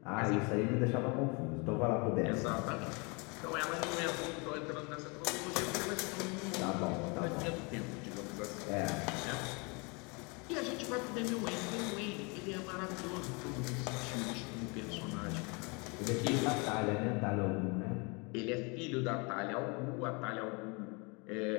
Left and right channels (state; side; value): quieter; right; 30.6 dB